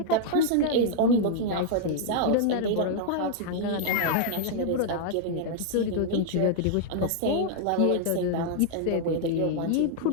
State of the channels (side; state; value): both; different; correlation -0.01